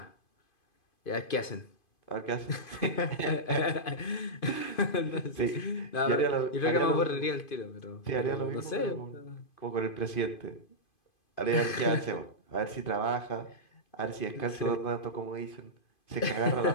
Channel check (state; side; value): late; right; 2.5 ms